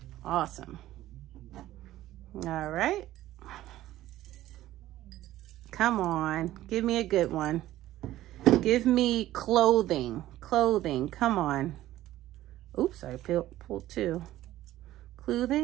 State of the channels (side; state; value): left; quieter; 14.6 dB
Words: Awesome. All right. Come on, give me a good one. Give me clothing. Clothing, come on. Oops, I pulled 2.